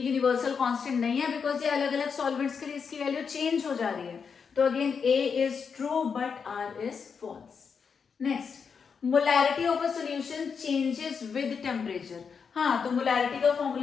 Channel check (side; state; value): right; quieter; 6.1 dB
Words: यूनिवर्सल कांस्टेंट नहीं है बिकॉज ये अलग अलग सॉल्वेंट्स के लिए इसकी वैल्यू चेंज हो जा रही है। तो again A is true but R is false. Next, molarity of a solution changes with temperature. हाँ, तो मोलैरिटी का